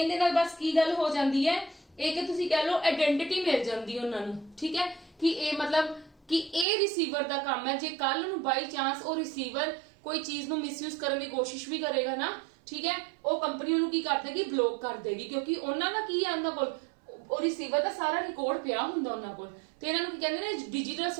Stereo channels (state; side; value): drops out; left; at 6.7 s